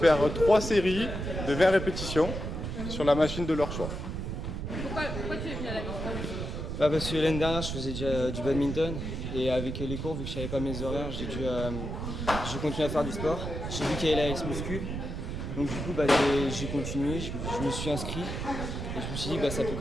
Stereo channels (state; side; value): noise; right; rumble, 4 dB below the sound